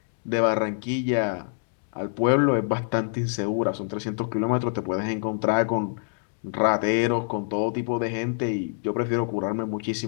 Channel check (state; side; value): silent; right; digital silence